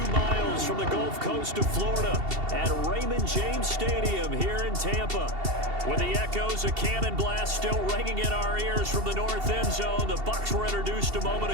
miles from the Gulf Coast of Florida at Raymond James Stadium here in Tampa. With the echoes of cannon blast still ringing in our ears from the north end zone, the Bucs were introduced a moment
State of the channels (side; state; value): left; late; 2.7 ms